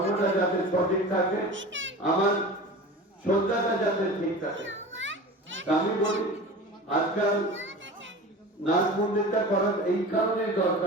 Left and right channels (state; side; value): normal; both; correlation 0.34